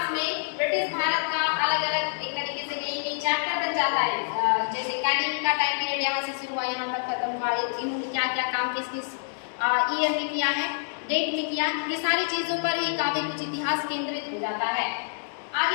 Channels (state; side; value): silent; right; 60 dB below the other